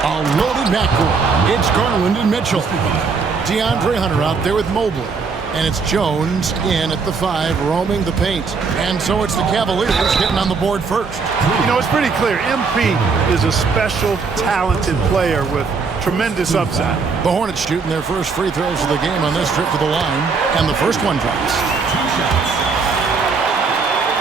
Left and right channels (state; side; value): quieter; left; 4.9 dB